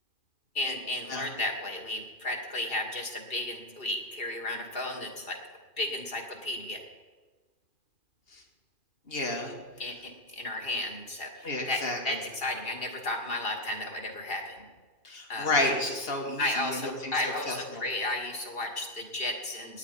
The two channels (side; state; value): right; late; 2.7 ms